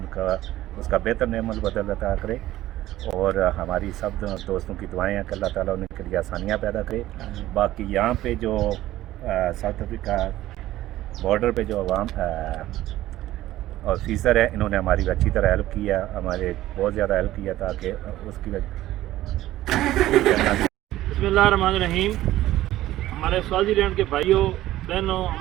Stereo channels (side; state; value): left; quieter; 15.0 dB